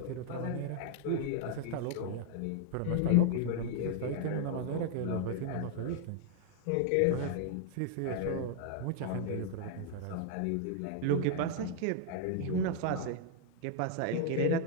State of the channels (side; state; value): both; different; correlation 0.00